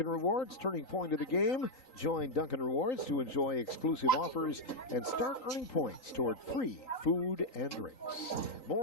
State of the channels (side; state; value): right; late; 3.9 ms